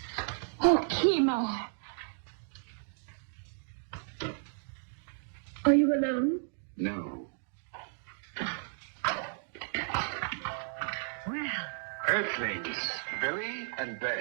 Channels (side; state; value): left; silent; digital silence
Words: Oh, Kimar. Are you alone? No. Well, Earthlings, Billy and